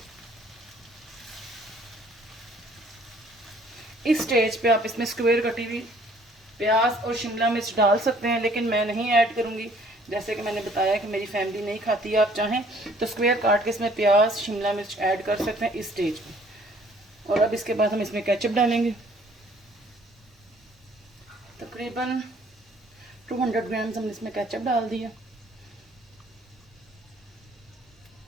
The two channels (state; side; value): normal; both; correlation 0.58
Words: इस स्टेज पे आप इसमें स्क्वायर कटी हुई प्याज और शिमला मिर्च डाल सकते हैं, लेकिन मैं नहीं ऐड करूँगी जैसे कि मैंने बताया कि मेरी फैमिली नहीं खाती है, आप चाहें तो स्क्वायर काट के इसमें प्याज शिमला मिर्च ऐड कर सकते हैं इस स्टेज पे। और अब इसके बाद हम इसमें केचप डालेंगे। तकरीबन 200 ग्राम हमने इसमें केचप डाल दिया।